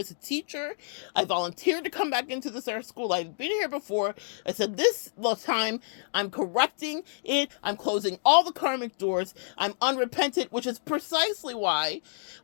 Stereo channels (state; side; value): silent; right; digital silence